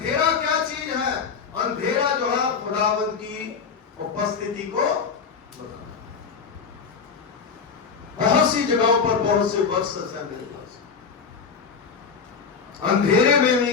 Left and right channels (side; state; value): right; quieter; 5.8 dB